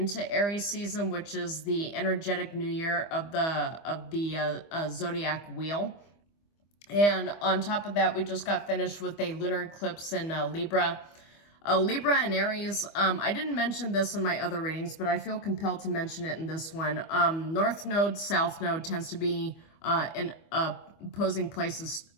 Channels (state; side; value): late; right; 25 ms